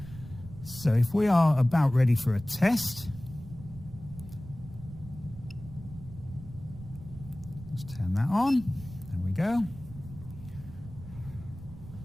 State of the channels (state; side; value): noise; right; rumble, 15 dB below the sound